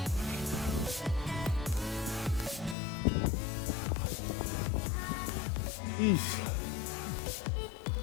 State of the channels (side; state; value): right; drops out; at 2.8 s